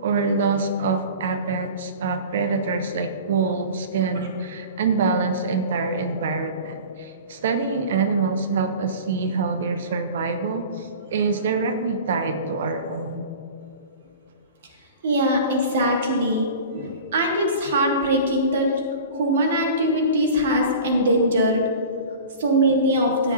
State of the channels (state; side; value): inverted; both; correlation -0.38